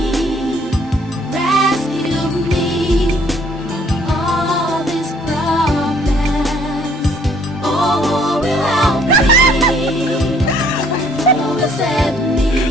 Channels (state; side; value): normal; both; correlation 0.62